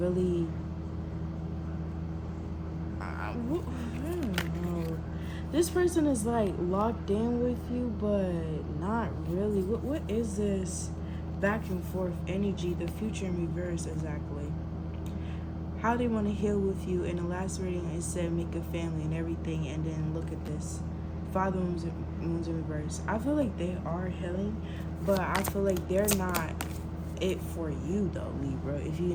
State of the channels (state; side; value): identical; both; correlation 1.00